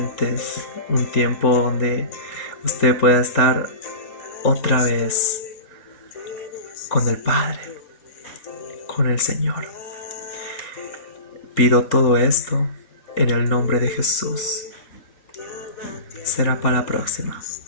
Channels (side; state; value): right; late; 3.8 ms